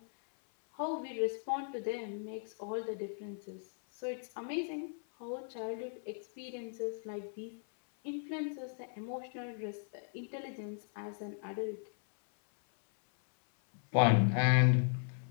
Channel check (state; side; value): silent; right; 53 dB below the other